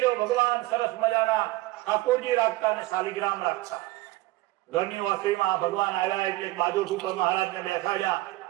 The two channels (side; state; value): left; quieter; 18.5 dB